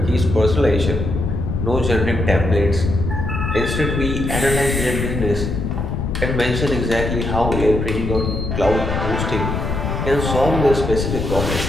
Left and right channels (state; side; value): noise; left; rumble, 2 dB below the sound